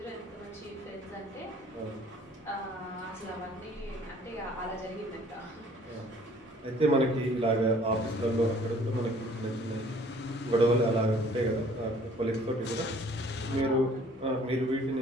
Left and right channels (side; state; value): both; normal; correlation 0.55